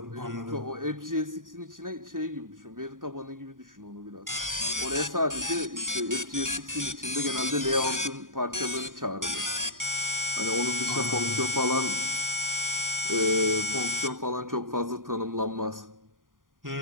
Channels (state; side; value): late; left; 0.89 ms